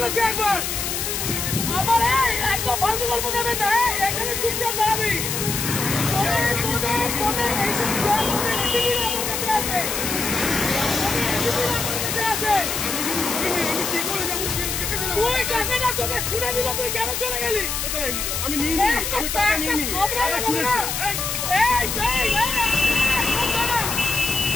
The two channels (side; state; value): left; noise; hiss, 2 dB below the sound